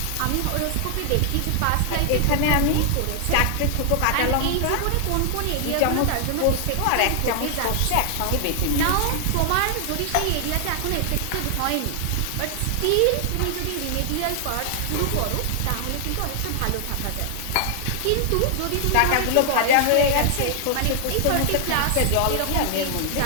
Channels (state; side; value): different; both; correlation 0.00